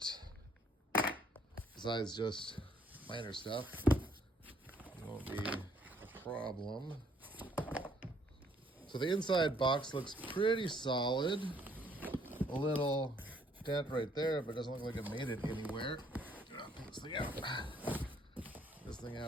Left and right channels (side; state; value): both; normal; correlation 0.65